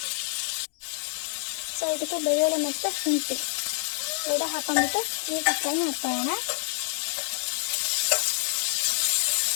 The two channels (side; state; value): right; silent; digital silence